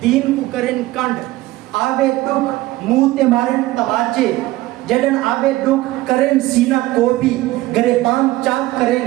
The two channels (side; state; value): left; quieter; 17.7 dB